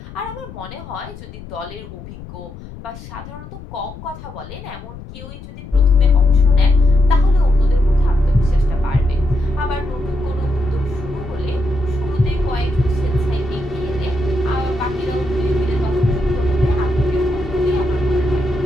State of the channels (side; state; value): left; noise; rumble, 14 dB below the sound